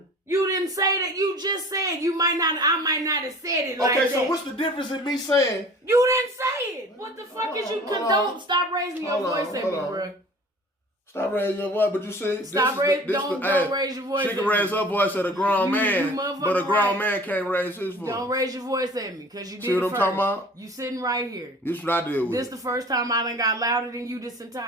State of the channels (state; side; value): normal; both; correlation 0.45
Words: You didn't say that. You just said I might not have said it like that. Okay, so what's the difference in me saying? You didn't say it. What the fuck is you condone? Stop raising your voice at me, bruh. Stop raising your voice, but you see, don't raise your voice. She can raise her voice at a grown man, but a grown man can't raise his voice. Don't raise your voice at me, because you did. See what I'm talking about? You sitting right here. This is what I deal with. This the first time I done got louder than you this